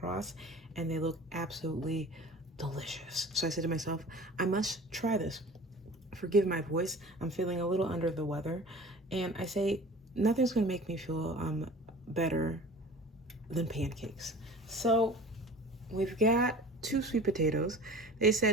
and they look absolutely delicious. So I said to myself, I must try this. Forgive my voice, I'm feeling a little under the weather. And I say, nothing's gonna make me feel better than pancakes. So we've got 2 sweet potatoes. They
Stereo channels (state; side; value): normal; both; correlation 0.41